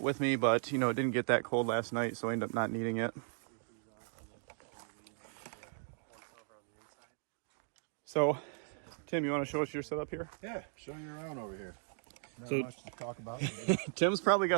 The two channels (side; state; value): left; silent; 53 dB below the other